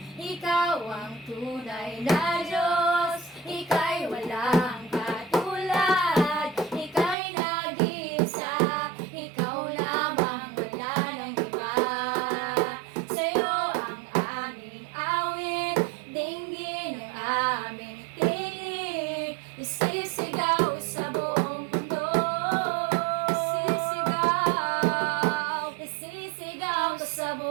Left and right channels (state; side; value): drops out; left; at 7.2 s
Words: Ikaw ang tunay na Diyos, ika'y walang katulad. Ika'y nag-iisa, ikaw lamang, wala nang iba. Sa'yo ang aming awit, dinggin ang aming tinig, isisigaw sa buong mundo. Isisigaw ka sa